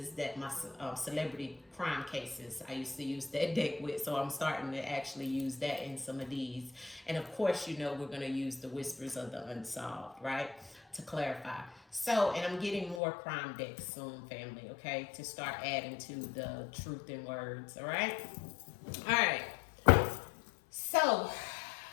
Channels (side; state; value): right; drops out; at 13.0 s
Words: that my celebrity crime cases, I used to use that deck with. So I'm starting to actually use that in some of these. And of course, we're going to use the Whispers of the Unsolved, right? To clarify. So, and I'm getting more crime decks soon, family, okay? To start adding to the truth in words, all right? All right. So,